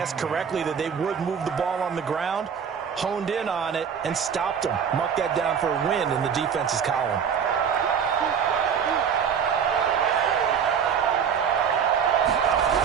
correctly that they would move the ball on the ground, honed in on it, and stopped them. Mark that down for a win in the defense's column.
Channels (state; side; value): quieter; left; 7.3 dB